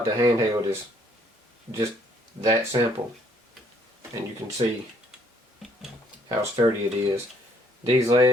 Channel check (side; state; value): both; normal; correlation 0.65